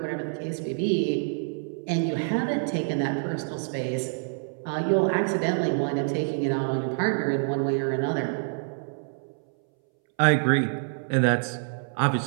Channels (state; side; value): silent; left; 60 dB below the other